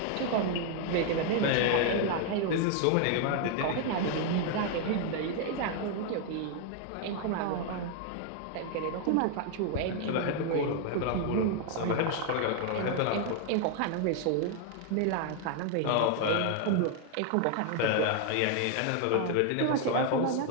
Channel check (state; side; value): different; both; correlation 0.00